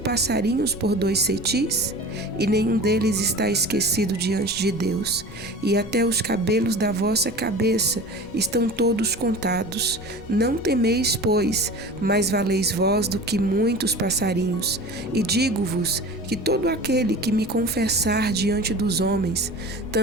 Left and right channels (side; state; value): left; noise; rumble, 18 dB below the sound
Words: por 2 cetis? E nenhum deles está esquecido diante de Deus. E até os cabelos da vossa cabeça estão todos contados. Não temeis, pois, mais valeis vós do que muitos passarinhos. E digo-vos que todo aquele que me confessar diante dos homens,